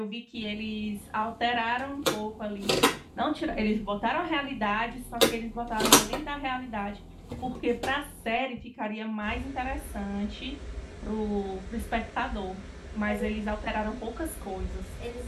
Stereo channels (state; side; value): identical; both; correlation 1.00